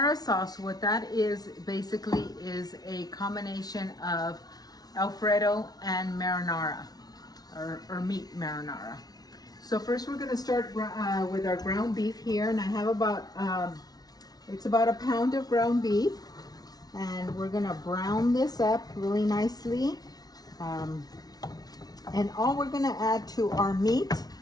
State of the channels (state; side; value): late; right; 0.19 ms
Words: sauce, what that is basically is a combination of Alfredo and marinara, or meat marinara. So first we're going to start with our ground beef here, and I have it's about a pound of ground beef, and we're going to brown this up really nicely. And all we're going to add to our meat